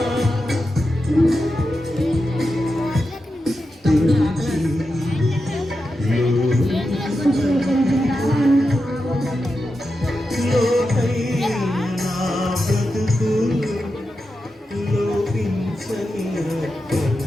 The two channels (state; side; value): normal; both; correlation 0.89